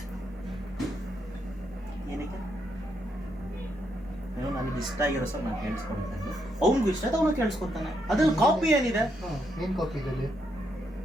ಏನಕ್ಕೆ ನನಗೆ ಇಷ್ಟ ಆಗಿರೋ ಸರ್ ನಾನು ಕೇಳಿಸ್ಕೊಳ್ತೇನೆ, ಅವ್ನಿಗೂ ಇಷ್ಟ ಆಯ್ತು ಅವನು ಕೇಳಿಸ್ಕೊತಾನೆ. ಅದ್ರಲ್ಲಿ ಕಾಪಿ ಏನಿದೆ? ಏನು ಕಾಪಿ ಇದರಲ್ಲಿ?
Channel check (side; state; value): both; normal; correlation 0.78